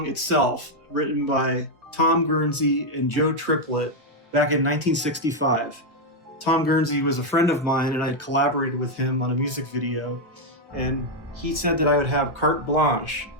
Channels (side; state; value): both; normal; correlation 0.01